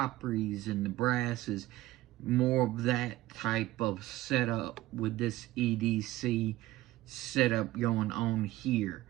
and the brasses, more of that type of setup with this EDC setup going on here.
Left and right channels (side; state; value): left; quieter; 17.0 dB